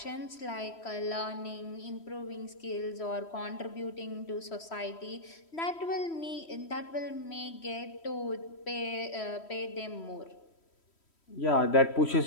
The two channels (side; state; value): right; late; 3.1 ms